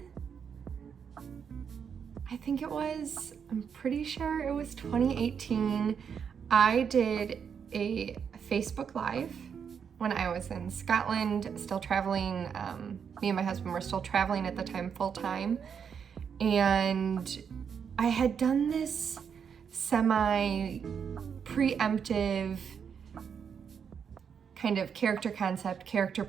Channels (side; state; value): left; quieter; 7.1 dB